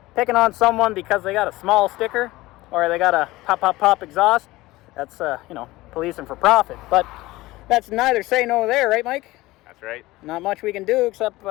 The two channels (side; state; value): right; quieter; 18.9 dB